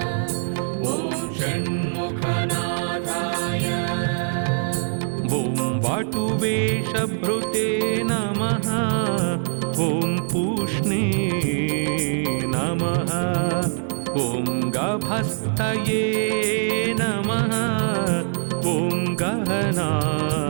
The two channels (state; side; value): silent; left; digital silence